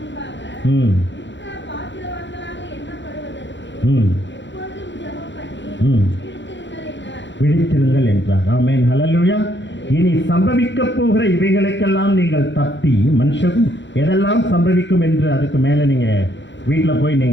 விழித்திருங்கள் என்றார். ஆமென், ஹல்லேலூயா. இனி சம்பவிக்க போகிற இவைகளுக்கெல்லாம் நீங்கள் தப்பி, மனுஷனும் எதெல்லாம் சம்பவிக்கும் என்று அதுக்கு மேலே நீங்கள் வீட்டில் போய்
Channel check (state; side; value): late; right; 0.53 ms